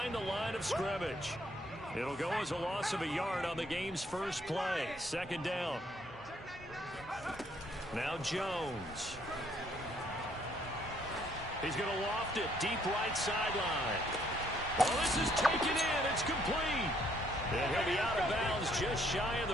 the line of scrimmage. It'll go as a loss of a yard on the game's first play. Second down. Now Jones. He's going to loft it deep right sideline. Well, this is taken in. It's complete. And he'll be out of bounds just shy of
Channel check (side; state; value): both; normal; correlation 0.67